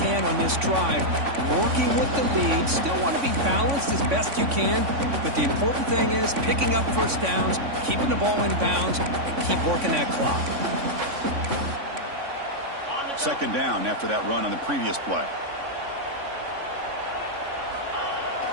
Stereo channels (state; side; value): late; left; 3.5 ms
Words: can on this drive, working with the lead. Still want to be balanced as best you can, but the important thing is picking up first downs, keeping the ball in bounds, and keep working that clock. Second down after that run on the previous play.